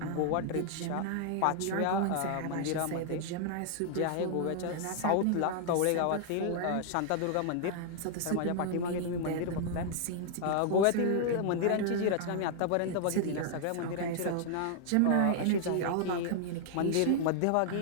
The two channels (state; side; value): different; both; correlation -0.01